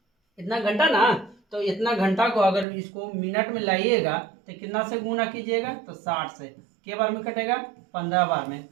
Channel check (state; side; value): drops out; left; at 2.7 s